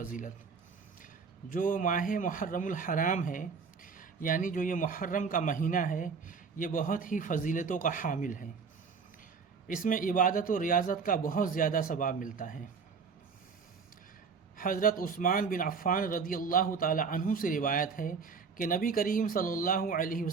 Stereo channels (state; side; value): quieter; left; 5.5 dB